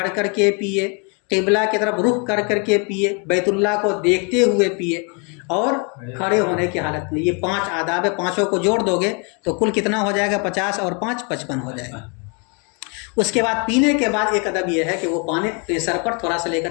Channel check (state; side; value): quieter; right; 35.0 dB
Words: کر کے پیے، قبلہ کی طرف رخ کر کے پیے، بیت اللہ کو دیکھتے ہوئے پیے، اور کھڑے ہونے کی حالت میں۔ یہ 5 آداب ہے، 5 کو جوڑ دو گے تو کل کتنا ہو جائے گا؟ 50 اور 5 55 ہو جائے گا۔ اس کے بعد پینے کے بعد ایک ادب یہ ہے کہ وہ پانی اپنے سر پر تھوڑا سا لے کر